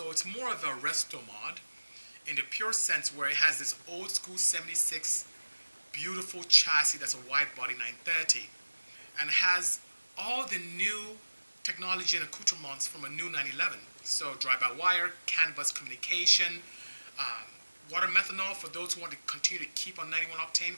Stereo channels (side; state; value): both; inverted; correlation -1.00